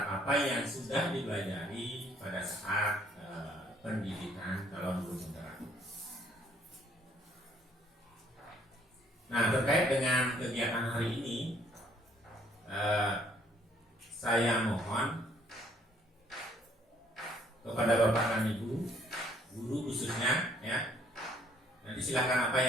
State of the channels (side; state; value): both; normal; correlation 0.63